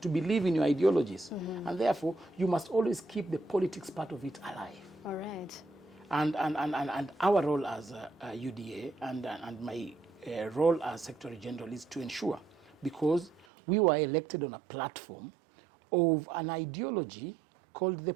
believe in your ideologies. And therefore, you must always keep the politics part of it alive. All right. And our role as UDA and my role as Secretary General is to ensure, because we were elected on a platform of an ideology called the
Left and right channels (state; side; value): drops out; left; at 13.5 s